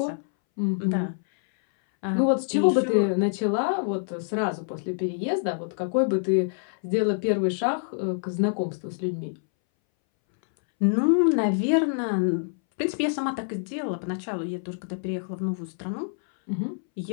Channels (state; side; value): silent; right; 61 dB below the other